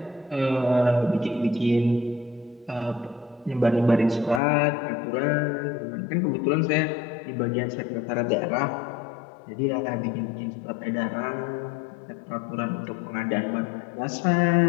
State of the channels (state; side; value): drops out; right; at 4.4 s